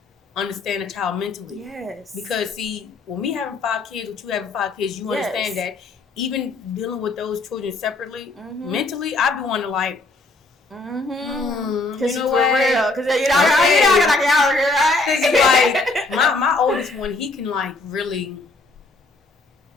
understand a child mentally. Yes. Because see, when me having 5 kids, with you having 5 kids, you understand that even dealing with those children separately, mentally, I be wanting to like, because you know for real, because you know, like my oldest one, he can like really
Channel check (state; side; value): quieter; right; 3.2 dB